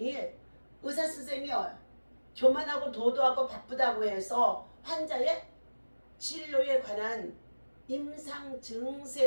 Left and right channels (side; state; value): both; inverted; correlation -1.00